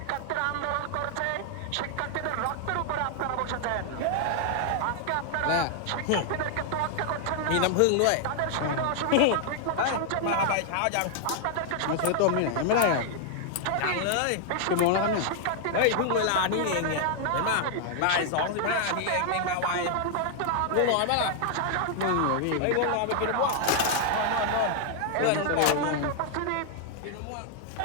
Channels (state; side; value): different; both; correlation 0.00